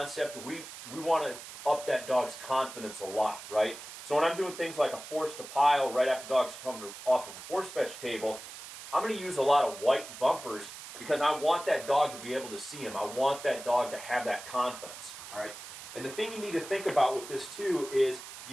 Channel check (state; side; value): noise; right; hiss, 12 dB below the sound